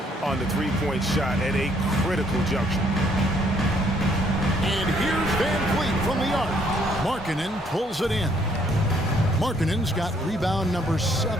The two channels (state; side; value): normal; both; correlation 0.67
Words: on the three-point shot at a critical juncture. And here's Van Vliet from the arc. Markkanen pulls it in. Markkanen's got rebound number